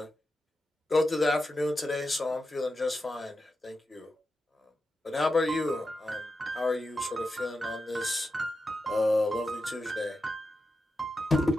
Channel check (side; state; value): both; normal; correlation 0.89